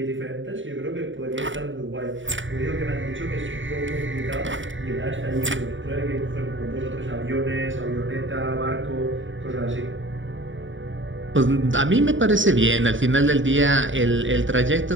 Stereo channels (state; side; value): late; left; 0.56 ms